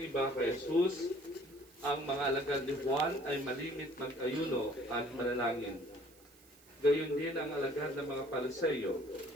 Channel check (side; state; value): right; noise; hiss, 26 dB below the sound